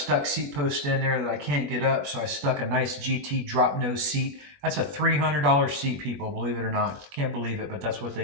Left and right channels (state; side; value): late; left; 20 ms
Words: seat post in there that I can't get up, so I stuck a nice GT drop nose seat. That's a $300 seat, people, believe it or not. Can't believe it, but that's what they